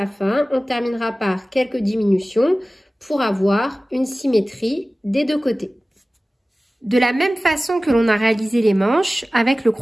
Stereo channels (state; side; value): normal; both; correlation 0.97